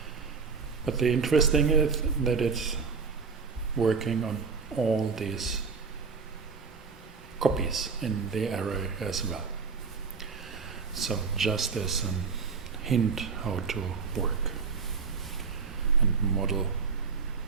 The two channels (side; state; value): left; quieter; 5.1 dB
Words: But the interesting is that it's working on all these copies in the array as well. So just as a hint how to work and model